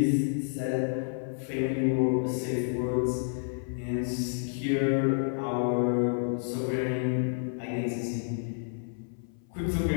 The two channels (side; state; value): right; silent; 58 dB below the other